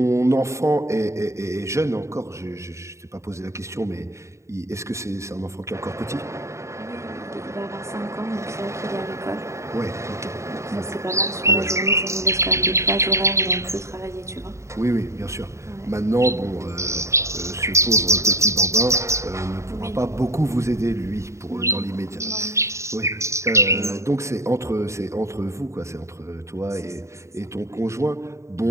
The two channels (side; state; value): left; late; 0.14 ms